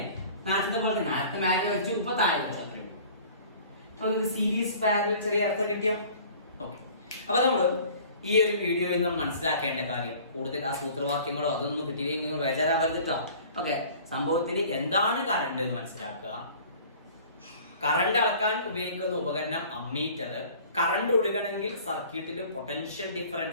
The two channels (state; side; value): inverted; both; correlation -0.48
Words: നേരത്തെ പോലെ നേരത്തെ മേലെ വെച്ചു ഇപ്പൊ താഴെ വെച്ചു അത്രയും. അപ്പൊ സീരീസ് പാരലൽ ചെറിയ അർത്ഥം കിട്ടിയോ? ഓക്കെ, അപ്പൊ നമ്മള് ഈ ഒരു വീഡിയോയിൽ നമ്മൾ മനസ്സിലാക്കേണ്ട കാര്യം കൂടുതൽ ആ സൂത്രവാക്യങ്ങളോ അതൊന്നും കിട്ടിയില്ലെങ്കിൽ നിങ്ങൾ ബേജാറാവരുതിട്ടോ. ഓക്കെ, സംഭവത്തിൽ എന്താണ് കറണ്ട് എന്ന് മനസ്സിലാക്കുക. കറണ്ട് അളക്കാൻ ഉപയോഗിക്കുന്ന ഉപകരണം അമ്മീറ്റർ. കറണ്ട് ഒഴുകണമെങ്കിൽ സർക്യൂട്ടിൽ പൊട്ടൻഷ്യൽ